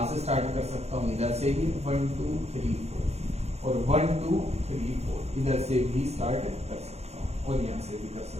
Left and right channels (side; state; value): left; late; 0.31 ms